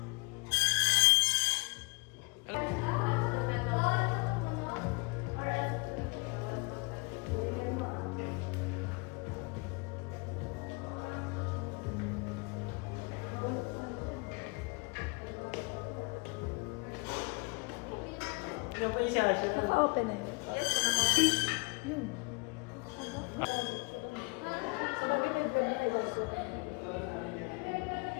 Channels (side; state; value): right; quieter; 30.1 dB